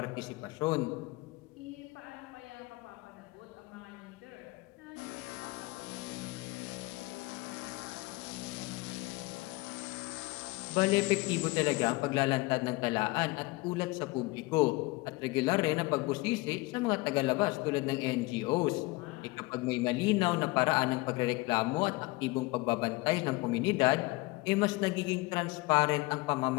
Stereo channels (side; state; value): right; quieter; 22.9 dB